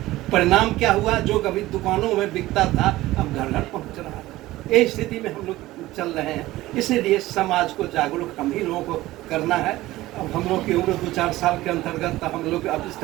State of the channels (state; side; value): quieter; left; 17.1 dB